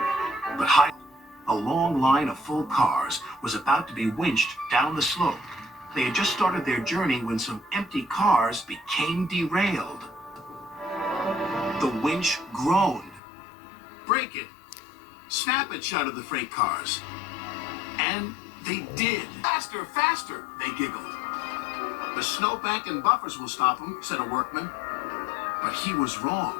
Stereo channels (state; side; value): drops out; right; at 13.2 s